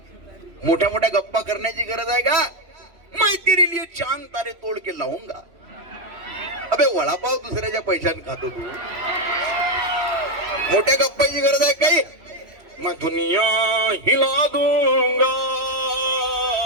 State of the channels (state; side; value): late; left; 3.1 ms